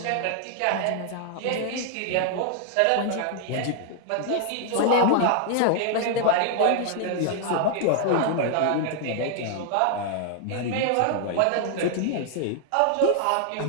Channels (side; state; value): both; different; correlation 0.00